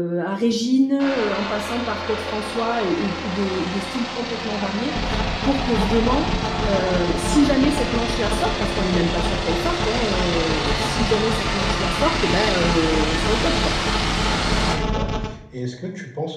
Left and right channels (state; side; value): identical; both; correlation 1.00